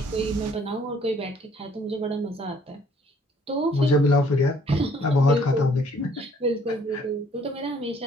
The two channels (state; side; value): normal; both; correlation 0.61